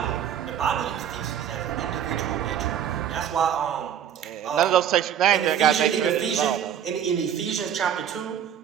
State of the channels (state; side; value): quieter; left; 9.3 dB